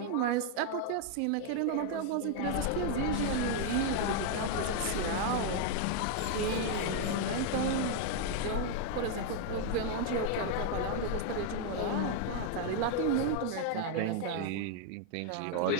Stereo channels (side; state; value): both; different; correlation 0.00